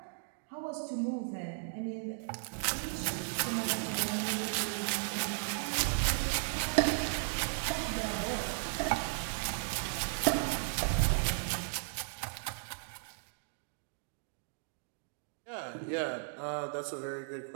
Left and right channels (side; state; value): left; silent; digital silence